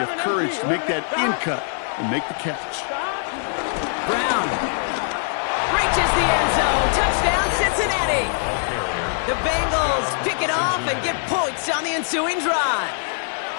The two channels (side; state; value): right; silent; 56 dB below the other